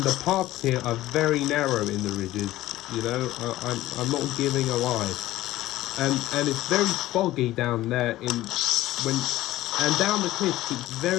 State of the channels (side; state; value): right; quieter; 15.9 dB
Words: the paths here are very narrow in the ridges, you know. I'm not giving a lie, and it's very foggy down there and down the cliffs it's